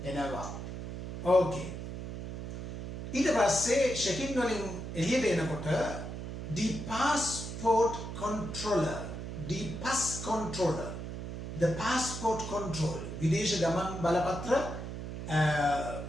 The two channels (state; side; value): noise; right; hum, 7 dB below the sound